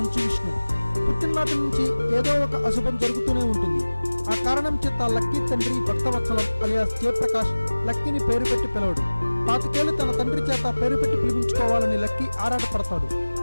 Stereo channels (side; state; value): both; inverted; correlation -1.00